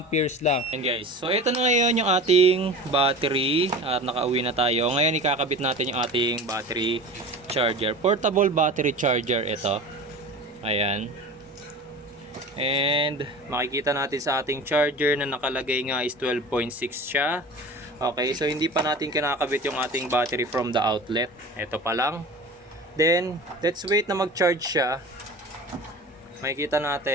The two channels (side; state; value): both; normal; correlation 0.35